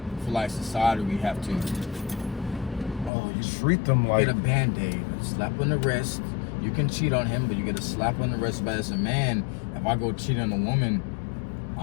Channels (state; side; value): drops out; right; at 3.1 s